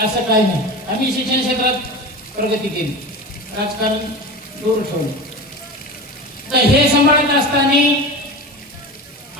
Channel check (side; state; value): both; normal; correlation 0.29